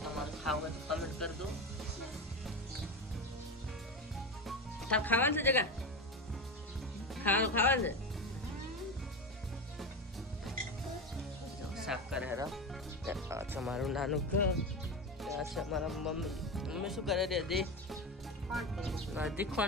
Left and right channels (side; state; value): both; normal; correlation 0.20